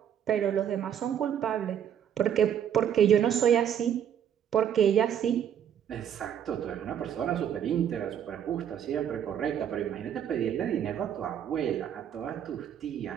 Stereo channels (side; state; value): left; quieter; 9.2 dB